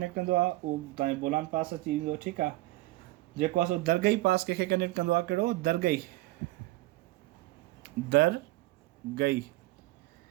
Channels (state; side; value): quieter; left; 19.4 dB